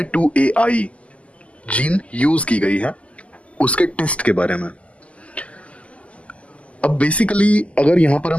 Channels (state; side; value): late; right; 0.063 ms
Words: जीन यूज की गई है, उसके टेस्ट के बारे में। अब बेसिकली अगर यहां पर